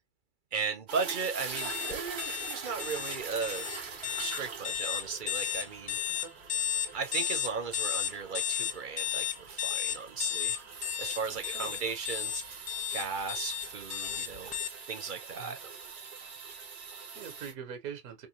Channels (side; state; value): left; late; 2.3 ms